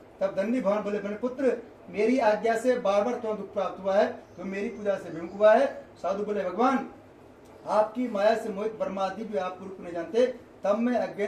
तब दंडी भगवान बोले मेरे पुत्र मेरी आज्ञा से बार बार तुम्हें दुख प्राप्त हुआ है, तो मेरी पूजा से विमुख हुआ है। साधु बोले भगवान आपकी माया से मोहित ब्रह्मादि भी आप रूप नहीं जानते, तब मैं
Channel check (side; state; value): both; identical; correlation 1.00